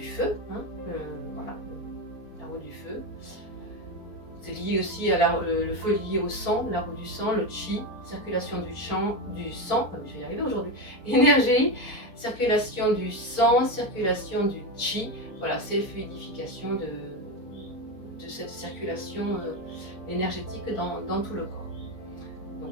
feu. Voilà, la roue du feu. C'est lié aussi à le feu lié au sang, la roue du sang, le chi, circulation du sang, je vais y arriver aujourd'hui, énergie, circulation du sang, circulation du chi. Voilà, c'est fluidification de cette circulation énergétique dans tout le corps.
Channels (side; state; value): right; late; 4.4 ms